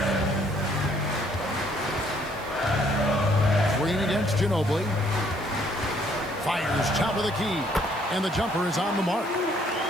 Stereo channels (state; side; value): noise; right; hiss, 22 dB below the sound